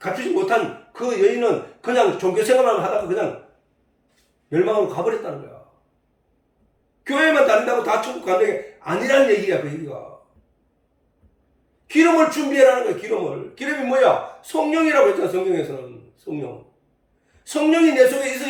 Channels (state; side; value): identical; both; correlation 1.00